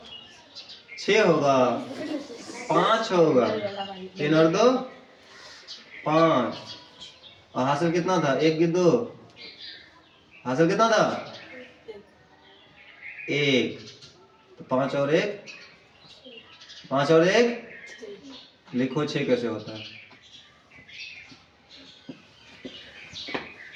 6 होगा, 5 होगा। 3 और 2 5। और हासिल कितना था? 1 की 2, हासिल कितना था? 1। तो 5 और 1, 5 और 1 लिखो 6 कैसे होता है?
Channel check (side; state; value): both; identical; correlation 1.00